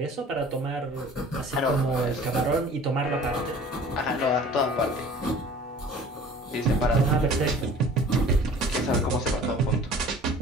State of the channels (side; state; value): both; normal; correlation 0.46